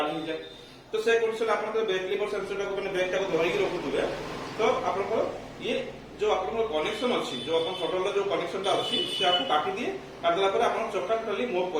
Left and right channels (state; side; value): identical; both; correlation 1.00